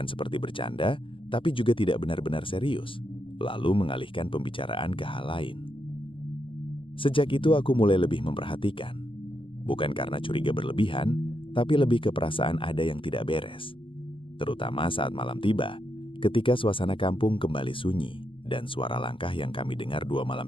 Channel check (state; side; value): late; right; 0.25 ms